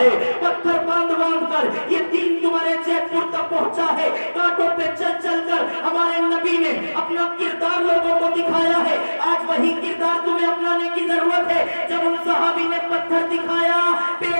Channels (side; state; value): both; inverted; correlation -1.00